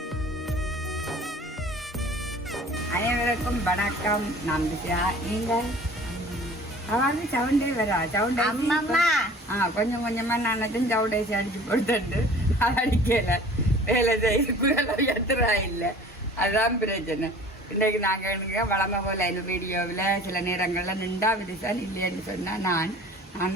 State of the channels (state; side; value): normal; both; correlation 0.46